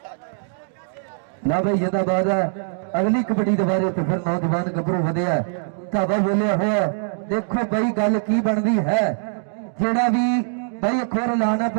ਨਾ ਭਾਈ ਜਿੰਦਾਬਾਦ ਹੈ ਅਗਲੀ ਕਬੱਡੀ ਦੇ ਬਾਰੇ ਤੇ ਫਿਰ ਨੌਜਵਾਨ ਗੱਭਰੂ ਵਧਿਆ ਧਾਵਾ ਬੋਲਿਆ ਹੋਇਆ ਦੇਖੋ ਬਈ ਗੱਲ ਕੀ ਬਣਦੀ ਹੈ ਜਿਹੜਾ ਵੀ ਬਈ ਖੋਰ ਲਾਣਾ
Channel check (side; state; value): left; silent; digital silence